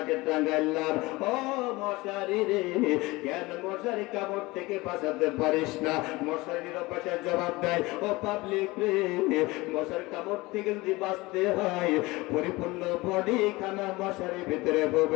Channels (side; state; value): right; quieter; 21.7 dB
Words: টাঙ্গাইলাম। ও মশারি রে, কেন মশারি কামড় থেকে বাঁচাতে পারিস না? মশারি নিরাপত্তার জবাব দেয়, ও পাবলিক রে, মশারি কামড় থেকে যদি বাঁচতে হয়, পরিপূর্ণ বডি খানা মশারির ভিতরে